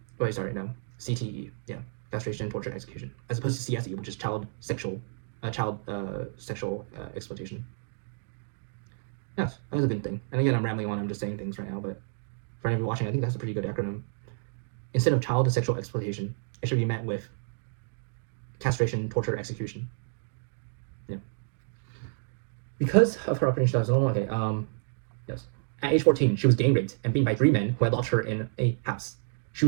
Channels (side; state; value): left; silent; digital silence